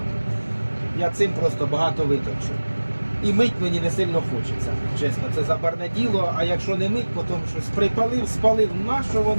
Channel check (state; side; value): inverted; both; correlation -1.00